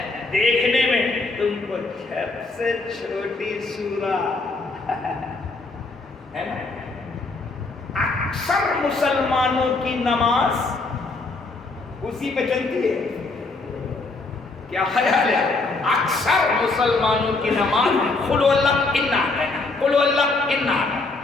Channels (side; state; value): right; quieter; 3.5 dB